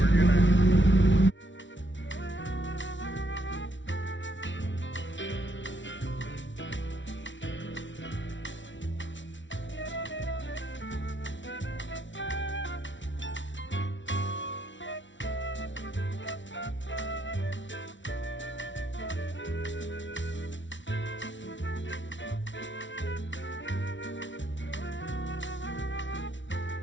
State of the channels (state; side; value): late; right; 0.55 ms